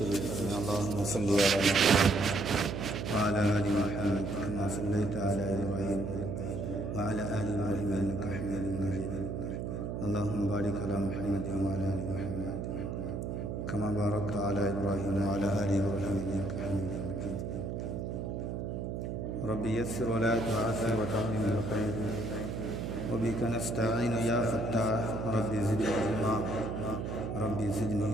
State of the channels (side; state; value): right; noise; hum, 4 dB below the sound